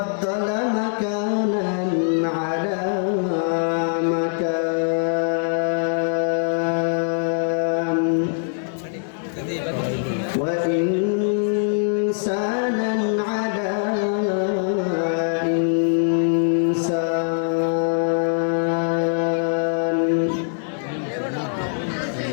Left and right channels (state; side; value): silent; right; 64 dB below the other